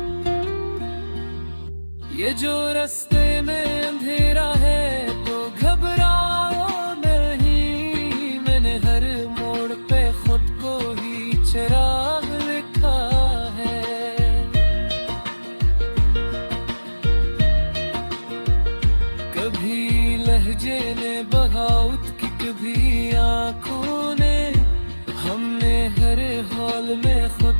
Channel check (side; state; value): both; inverted; correlation -1.00